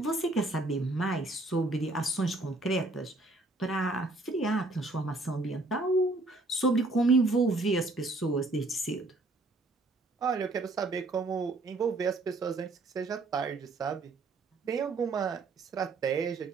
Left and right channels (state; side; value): quieter; left; 3.1 dB